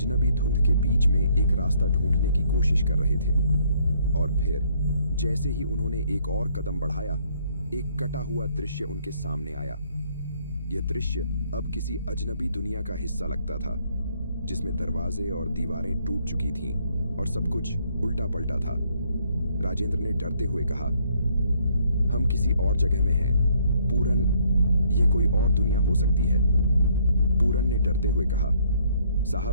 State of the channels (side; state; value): both; inverted; correlation -0.66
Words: धुंध के बीच में एक रास्ता ढूंढने की कोशिश कर रहे थे। और फिर जैसे ही उन्होंने एक और कदम बढ़ाया, एक कटा हुआ दृश्य उनके सामने आया। यह दृश्य अब किसी अजनबी दुनिया का हिस्सा लगता था, जिसमें दरवाजे और दीवारें टूट चुकी थीं और सब कुछ उल्टा पलटा था। राजेंद्र ने डरते हुए कहा, हम किसी और जगह में हैं। पूरन, यह कोई और दुनिया हो सकती है। पूरन ने डरते हुए कहा,